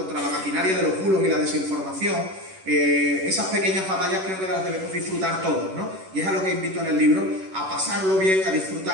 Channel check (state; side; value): late; left; 11 ms